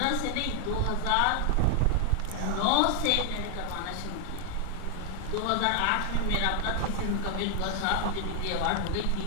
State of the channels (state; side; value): different; both; correlation 0.00